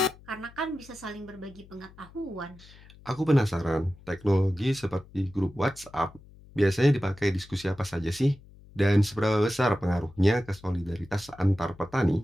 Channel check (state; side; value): noise; left; hum, 23 dB below the sound